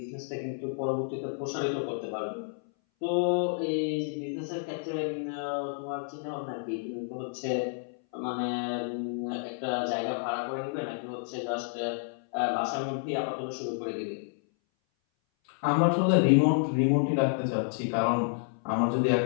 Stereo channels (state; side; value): silent; right; 58 dB below the other